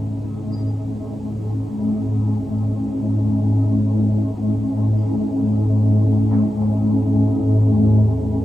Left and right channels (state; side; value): normal; both; correlation 0.92